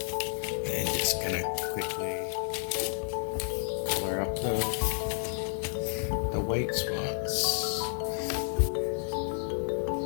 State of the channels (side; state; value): right; silent; 57 dB below the other